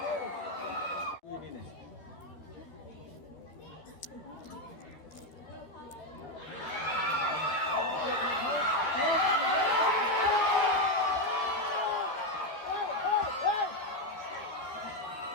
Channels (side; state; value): right; late; 13 ms